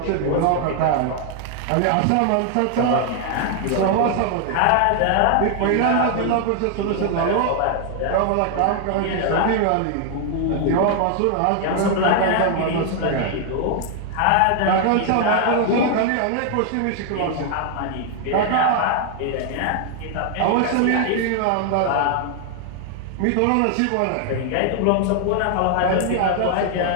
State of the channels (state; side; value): different; both; correlation 0.00